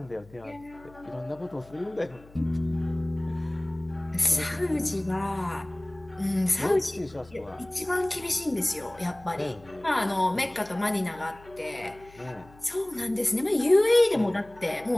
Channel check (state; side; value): noise; left; hum, 23 dB below the sound